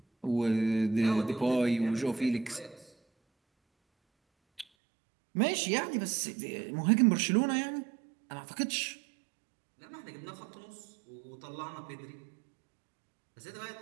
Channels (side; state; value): left; drops out; at 4.7 s